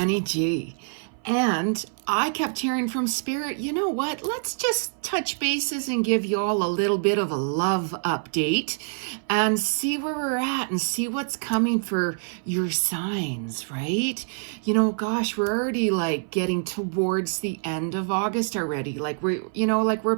Ji. And I kept hearing from Spirit, you know what? Let's just touch bases and give you all a little bit of a love update and see where we're at and see what's coming for your signs, right? You know, gosh, we're already like getting towards the end of August already. Like we're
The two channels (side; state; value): left; silent; 58 dB below the other